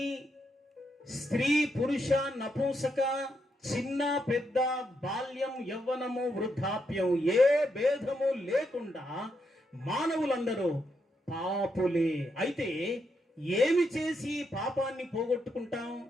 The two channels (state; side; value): normal; both; correlation 0.80